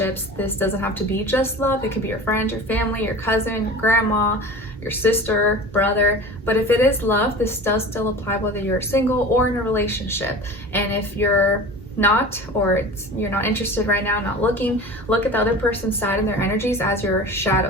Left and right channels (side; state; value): both; normal; correlation 0.37